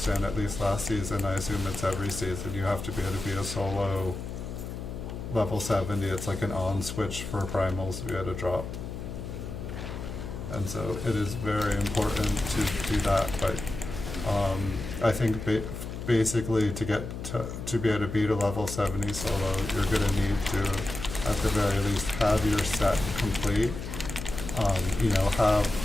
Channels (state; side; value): noise; left; hum, 7 dB below the sound